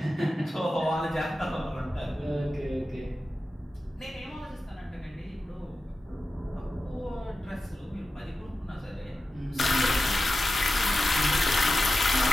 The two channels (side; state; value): both; normal; correlation 0.93